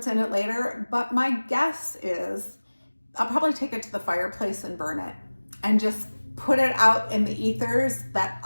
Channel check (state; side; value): inverted; both; correlation -1.00